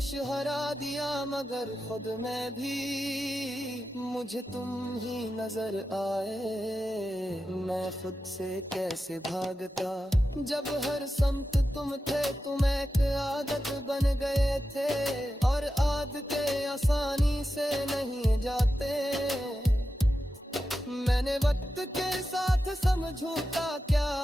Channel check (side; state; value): both; normal; correlation 0.91